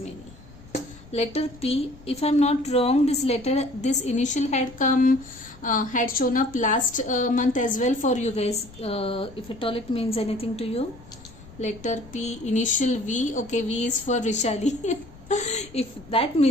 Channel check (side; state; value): left; noise; rumble, 21 dB below the sound